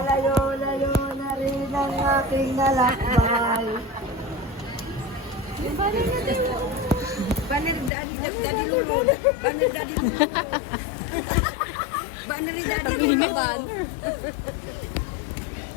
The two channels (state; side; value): drops out; right; at 7.9 s